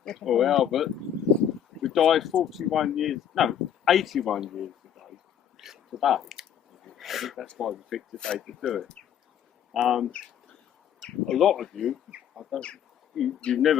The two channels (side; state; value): right; quieter; 9.2 dB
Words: or Albert, who died 81 years today. I think that's why we picked today to do it. A lot of you, you've